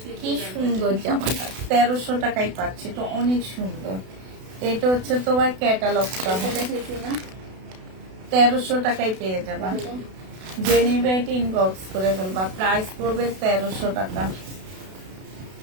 কি সুন্দর জামাটা, 1300 টাকায় পাচ্ছি, তো অনেক সুন্দর। এটা হচ্ছে তোমার ক্যাটালগটা হবে, 1300 টাকায় পেয়ে যাবা। যে নিবে এটা ইনবক্স করে ফেলবা। প্রাইস পড়বে 1300 টাকা।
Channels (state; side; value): late; left; 32 ms